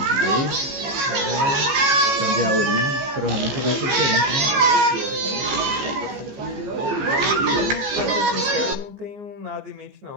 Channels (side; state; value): left; late; 15 ms